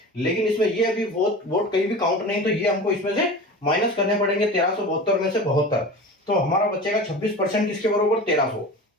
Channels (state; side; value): normal; both; correlation 0.33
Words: लेकिन इसमें ये अभी वोट कहीं भी काउंट नहीं, तो ये हमको इसमें से माइनस करने पड़ेंगे 1372 में से 72। तो हमारा बचेगा 26% किसके बराबर 1300।